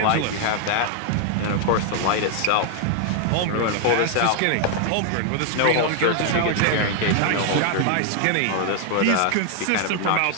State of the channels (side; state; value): both; different; correlation 0.00